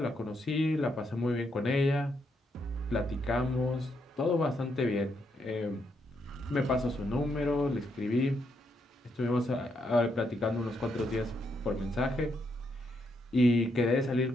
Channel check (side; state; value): both; normal; correlation 0.78